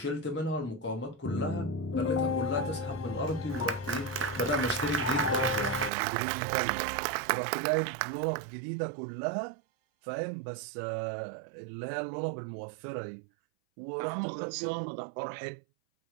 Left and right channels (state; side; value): drops out; left; at 5.9 s